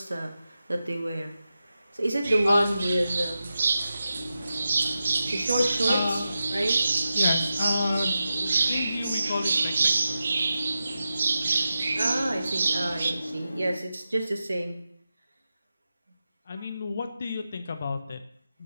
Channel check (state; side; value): inverted; both; correlation -0.91